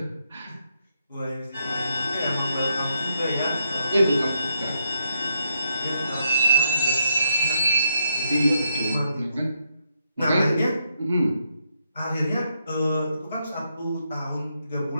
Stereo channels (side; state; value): both; inverted; correlation -0.79